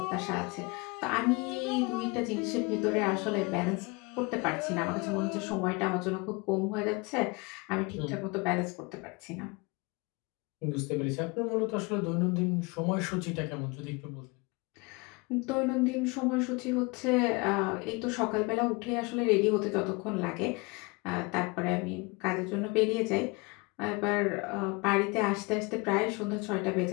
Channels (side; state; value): right; quieter; 27.3 dB